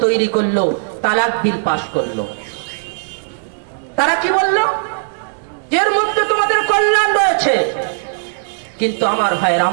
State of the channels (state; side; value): silent; left; digital silence